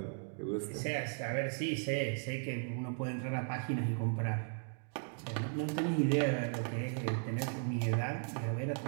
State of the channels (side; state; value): left; silent; 53 dB below the other